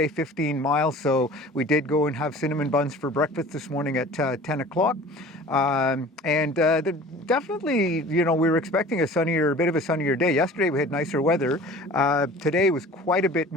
15 miles, so we did go and have cinnamon buns for breakfast this morning at 10 o'clock. Definitely, you know, we were expecting a bit of a sunnier day. Yesterday we had nicer weather. Today was quite a bit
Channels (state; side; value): normal; both; correlation 0.43